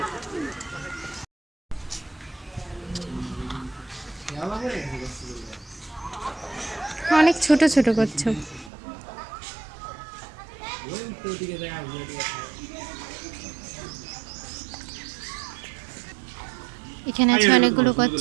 অনেক ছোট ছোট কচ্ছপ। এখানে আছে অনেকগুলো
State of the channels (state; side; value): drops out; left; at 8.7 s